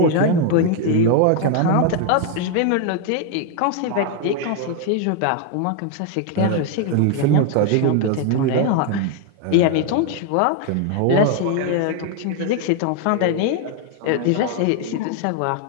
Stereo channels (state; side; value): different; both; correlation 0.01